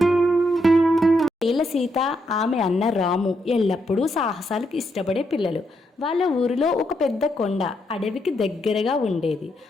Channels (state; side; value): normal; both; correlation 0.79